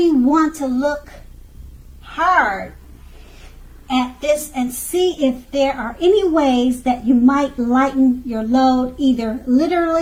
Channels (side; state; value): both; identical; correlation 1.00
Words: want to look hard at this and see if there are any ways that you might lighten your load, either